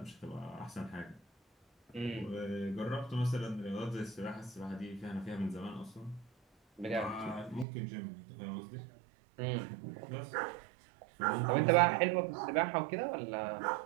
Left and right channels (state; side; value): drops out; left; at 7.7 s